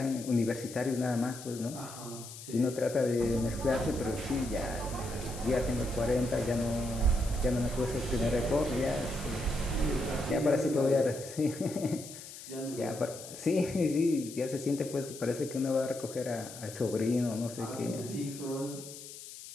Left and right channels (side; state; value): left; noise; hiss, 13 dB below the sound